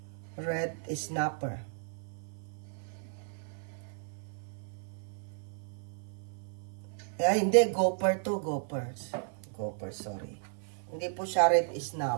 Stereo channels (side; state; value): left; silent; 55 dB below the other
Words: Red snapper. Hindi, gopher to, gophers. Gopher, sorry. Hindi po siya red